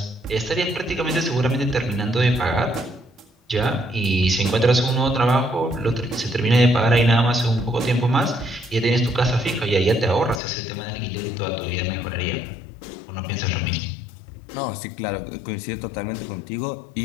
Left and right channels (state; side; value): drops out; right; at 10.4 s